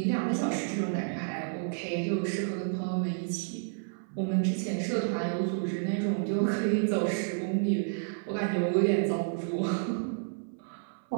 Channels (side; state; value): left; silent; 57 dB below the other